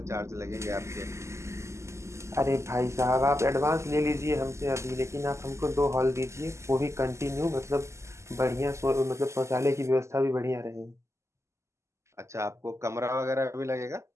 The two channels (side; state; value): left; late; 0.13 ms